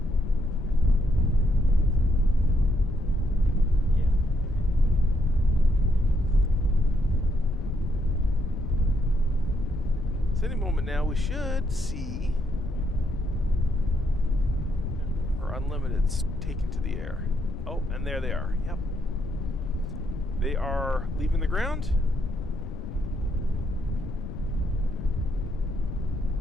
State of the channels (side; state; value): left; noise; rumble, 8 dB below the sound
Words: So any moment now we should see our Unlimiteds taken to the air. Oh, and there they are. Yep. They are leaving the ground.